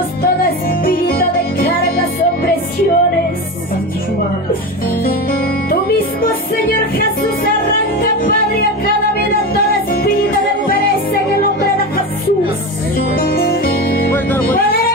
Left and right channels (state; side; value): normal; both; correlation 0.23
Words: todo espíritu de cargas, opresiones. Tú mismo, Señor Jesús, arranca, Padre, a cada vida todo espíritu de pereza en el nombre de Jesús. Poder